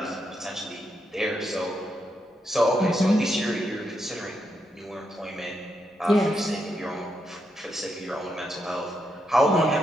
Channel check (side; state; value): both; normal; correlation 0.81